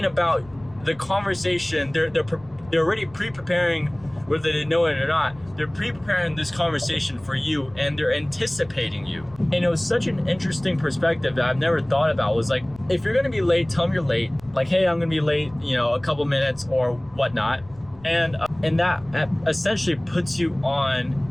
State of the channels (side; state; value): left; noise; rumble, 24 dB below the sound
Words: about the conversation. They're already pre-preparing, whether they know it or not. They're pre-preparing this conversation for you, and they're anticipating you. And it was such an interesting perspective that I've never thought about. Was like, if you're gonna be late, tell them you're late. Like, hey, I'm gonna be late, a couple minutes or whatnot. And that essentially puts you